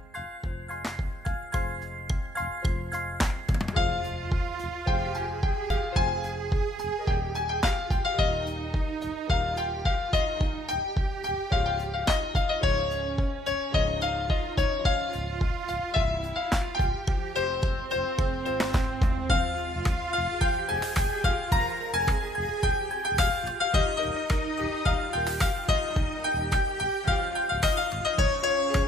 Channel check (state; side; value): normal; both; correlation 0.70